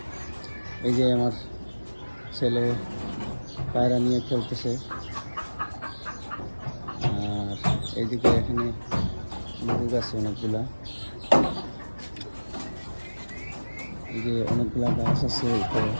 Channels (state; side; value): inverted; both; correlation -1.00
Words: এই যে আমার ছেলে পায়রা নিয়ে খেলতেছে, আর এইদিকে এখানে লেবু গাছ অনেকগুলা, এই যে অনেকগুলা গাছ আছে উপরে।